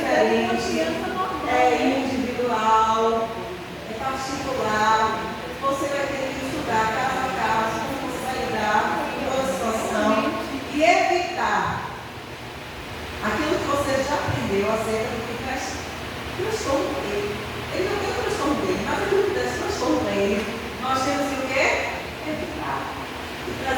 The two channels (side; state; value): both; identical; correlation 1.00